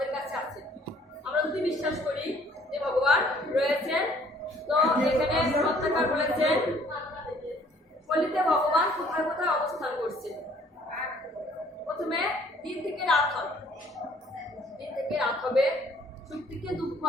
কাছে আছে। আমরা যদি বিশ্বাস করি যে ভগবান রয়েছেন, তো এখানে সত্যাকার বলেছেন কলিতে ভগবান কোথায় কোথায় অবস্থান করছে। প্রথমে দিন থেকে রাত হবে, দিন থেকে রাত হবে, সুখ থেকে দুঃখ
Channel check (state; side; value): normal; both; correlation 0.59